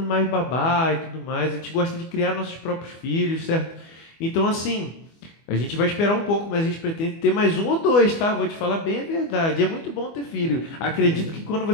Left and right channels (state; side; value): late; right; 24 ms